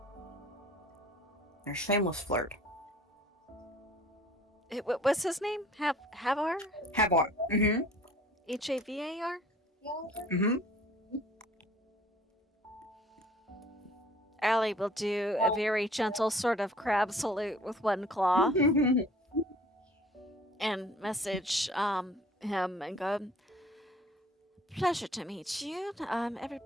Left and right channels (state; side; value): normal; both; correlation 0.52